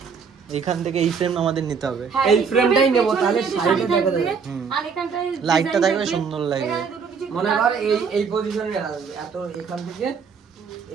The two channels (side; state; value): left; quieter; 5.9 dB